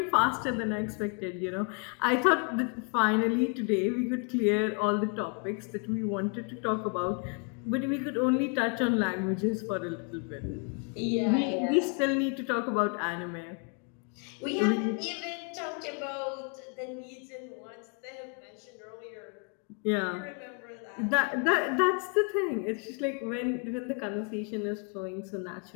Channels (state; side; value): quieter; right; 35.7 dB